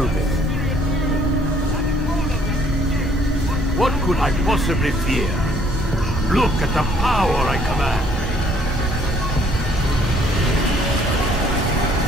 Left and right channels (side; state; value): both; normal; correlation 0.63